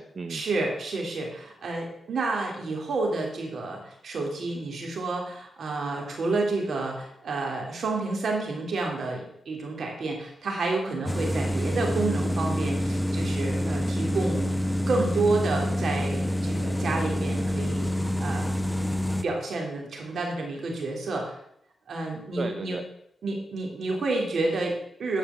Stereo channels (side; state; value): both; normal; correlation 0.89